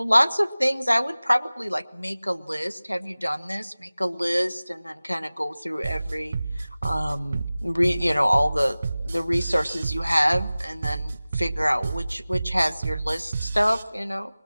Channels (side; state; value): both; inverted; correlation -0.98